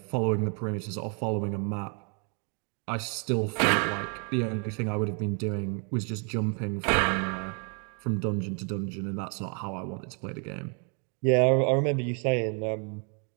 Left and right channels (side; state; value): left; quieter; 38.4 dB